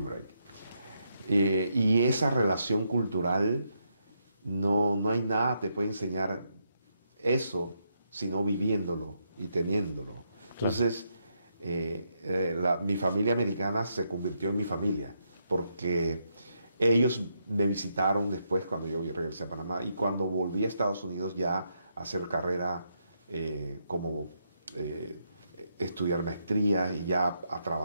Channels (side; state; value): both; inverted; correlation -0.79